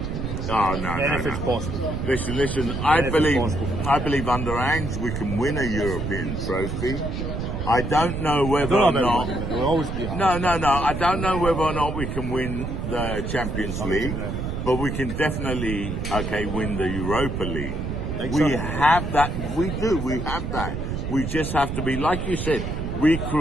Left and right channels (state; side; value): noise; right; rumble, 4 dB below the sound